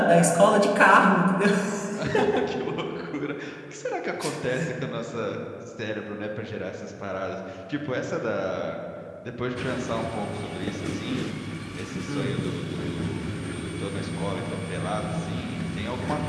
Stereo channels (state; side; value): identical; both; correlation 1.00